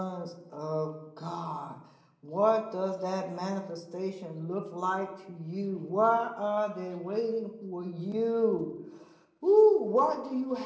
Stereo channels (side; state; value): both; identical; correlation 1.00